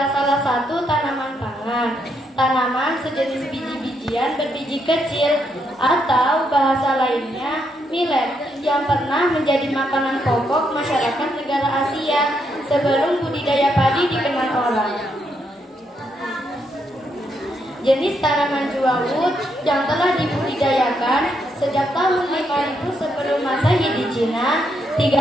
salah satu tanaman pangan. Tanaman sejenis biji-bijian berbiji kecil atau bahasa lainnya millet yang pernah menjadi makanan pokok masyarakat negara Asia sebelum budidaya padi dikenal orang. Jenis tanaman Jewawut yang telah dibudidayakan sejak tahun 5000 sebelum Masehi di Cina,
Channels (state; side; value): normal; both; correlation 0.77